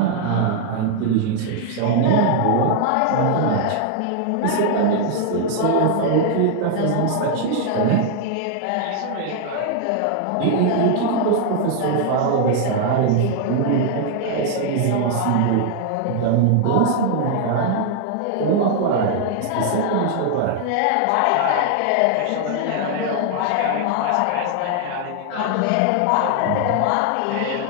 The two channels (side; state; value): both; different; correlation 0.00